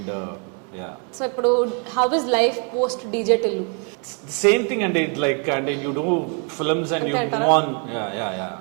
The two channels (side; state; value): left; quieter; 39.2 dB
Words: yeah. So ఇప్పుడు how is life post DJ Tillu? Same thing అండి, లైక్ అంటే you do films and you move on.